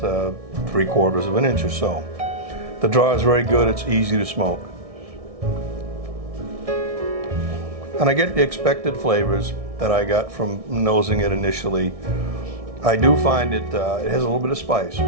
3/4 of an inch or so. The draw is very good, it's easy to smoke. And I get the expected flavors that I got from nosing it initially. I do find it has a little bit of spice,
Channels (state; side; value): late; left; 1.6 ms